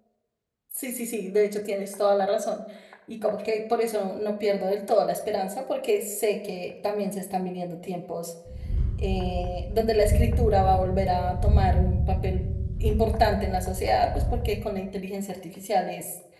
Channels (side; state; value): both; identical; correlation 1.00